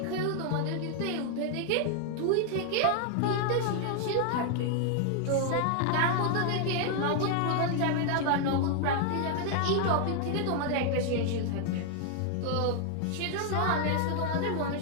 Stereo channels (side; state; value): both; different; correlation 0.00